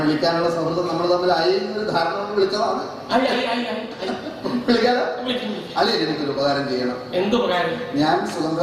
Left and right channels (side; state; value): both; identical; correlation 1.00